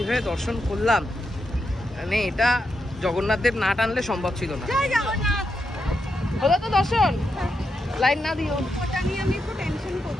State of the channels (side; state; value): both; normal; correlation 0.85